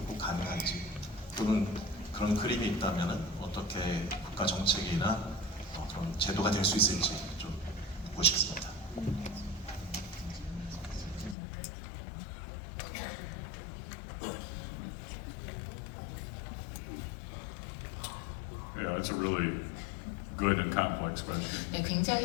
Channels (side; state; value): right; drops out; at 11.4 s